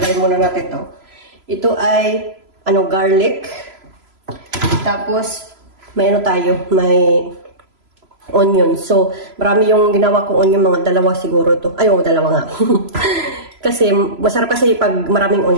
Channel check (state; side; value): late; left; 3.0 ms